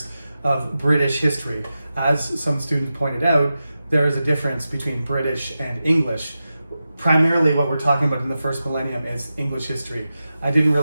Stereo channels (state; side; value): inverted; both; correlation -0.92